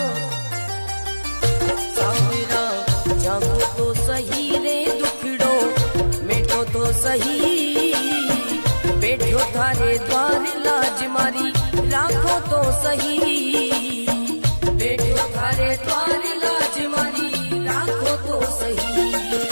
सांवरा जागो तो सही रे दुखड़ो मिटो तो सही, बैठो थारे द्वार लाज मारी राखो तो सही, बैठो थारे द्वार लाज मारी राखो तो सही।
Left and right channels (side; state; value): both; inverted; correlation -1.00